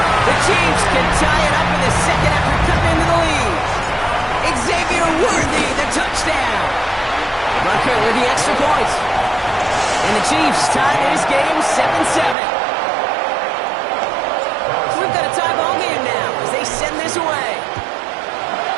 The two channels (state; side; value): drops out; left; at 12.4 s